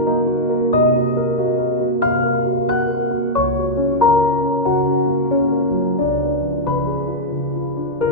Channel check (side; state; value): right; late; 2.0 ms